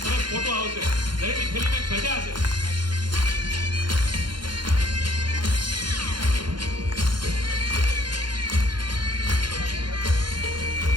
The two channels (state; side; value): late; left; 0.72 ms